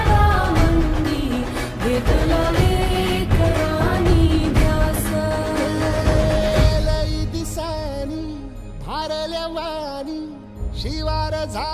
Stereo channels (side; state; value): both; identical; correlation 1.00